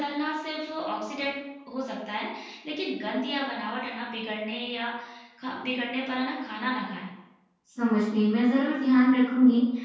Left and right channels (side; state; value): both; identical; correlation 1.00